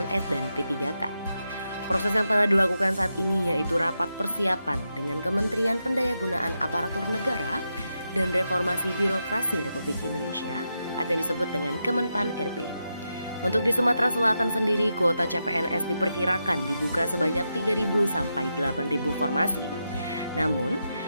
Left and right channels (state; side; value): inverted; both; correlation -0.86